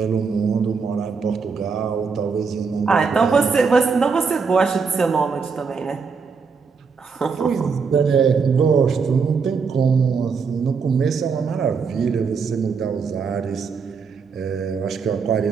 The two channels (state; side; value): quieter; left; 5.4 dB